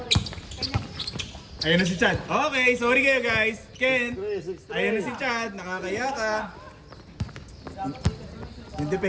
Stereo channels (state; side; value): identical; both; correlation 1.00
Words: Ayun na si Chad. Okay, sorry kayo guys. Ken, 6-3. ayun na si Chad. Nakakaya ka. Yung